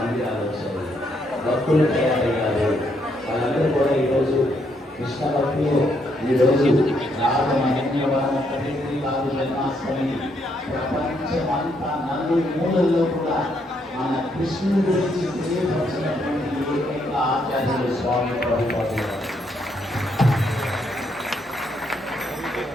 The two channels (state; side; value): normal; both; correlation 0.74